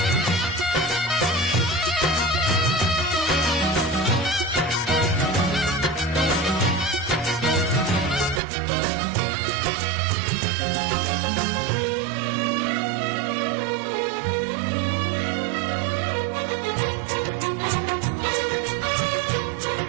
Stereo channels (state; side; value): drops out; left; at 8.4 s